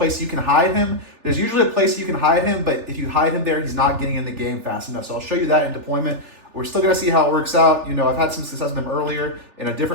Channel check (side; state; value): left; late; 3.4 ms